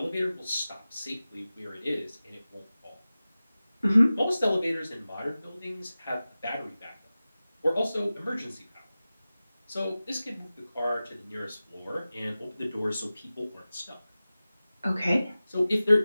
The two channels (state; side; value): inverted; both; correlation -0.96